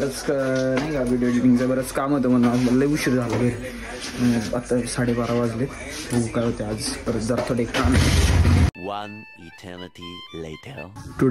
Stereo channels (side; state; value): both; identical; correlation 1.00